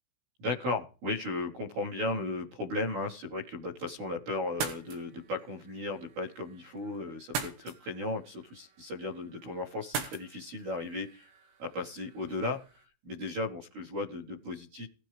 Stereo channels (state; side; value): late; left; 16 ms